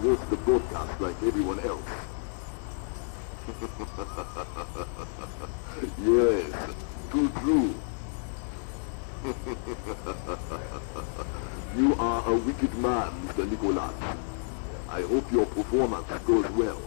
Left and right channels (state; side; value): silent; right; digital silence